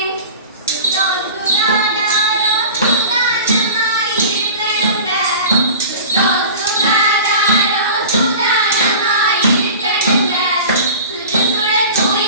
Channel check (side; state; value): both; inverted; correlation -0.38